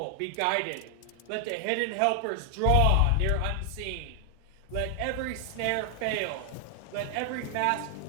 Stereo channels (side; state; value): both; different; correlation 0.00